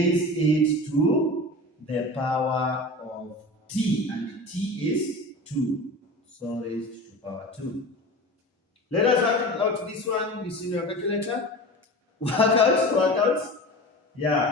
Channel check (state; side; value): normal; both; correlation 0.33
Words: it to the power of t, and t is 2. So raised to power 2. Let us work out this one using your calculator. Work out.